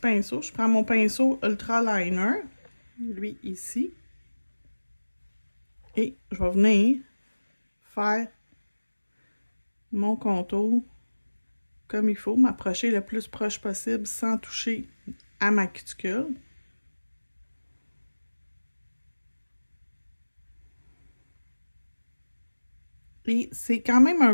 Je prends mon pinceau Ultra Liner, lui ici. Et je vais venir faire mon contour comme il faut, m'approcher le plus proche possible sans toucher à ma cuticule. Et c'est quand même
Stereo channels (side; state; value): both; inverted; correlation -1.00